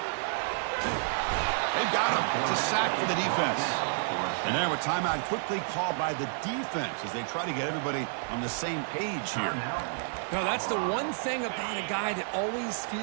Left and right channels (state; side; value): silent; left; digital silence